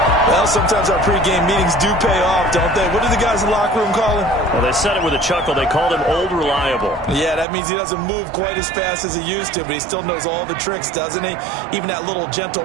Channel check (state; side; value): drops out; left; at 7.5 s